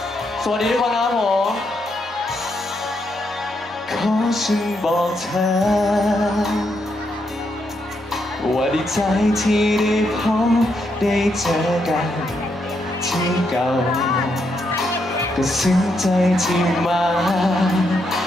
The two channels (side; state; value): both; normal; correlation 0.79